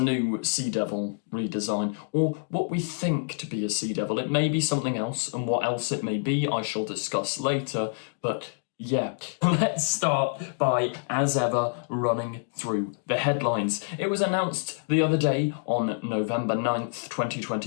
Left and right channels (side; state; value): right; silent; digital silence